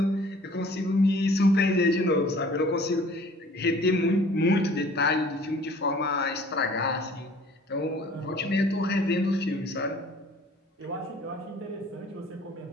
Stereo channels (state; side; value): normal; both; correlation 0.51